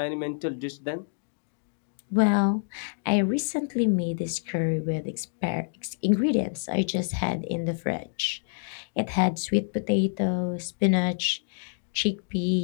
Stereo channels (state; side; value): silent; right; digital silence